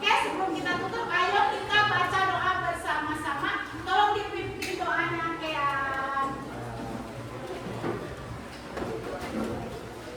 sebelum kita tutup, ayo kita baca doa bersama-sama. Tolong dipimpin doanya, Kean.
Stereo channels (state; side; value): identical; both; correlation 1.00